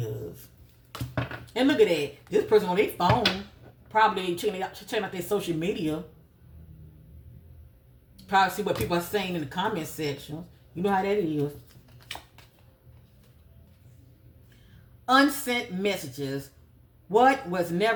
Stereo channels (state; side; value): identical; both; correlation 1.00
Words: And look at that. This person on their phone, probably checking out their social media. Probably see what people are saying in the comment section. You know how that is. Unsent messages. What was